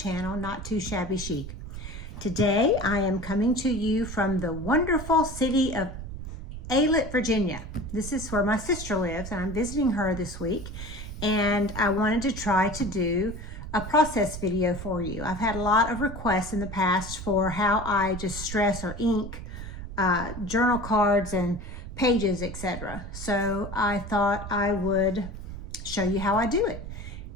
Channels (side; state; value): right; noise; rumble, 9 dB below the sound